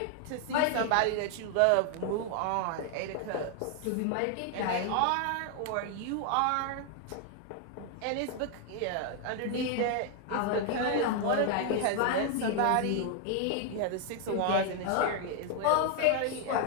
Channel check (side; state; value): both; different; correlation 0.00